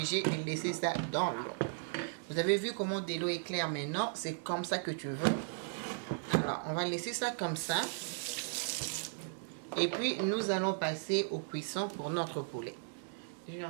de laisser ça dans l'eau. Vous avez vu comment de l'eau est claire maintenant. C'est comme ça que tu veux. Alors, on va laisser ça comme ça. Et puis, nous allons passer au cuisson pour notre poulet.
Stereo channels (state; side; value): silent; left; digital silence